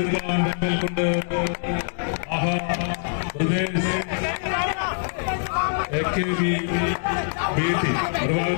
ഒതുക്കാൻ ബന്ധൽ കൊണ്ട്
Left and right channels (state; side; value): silent; right; digital silence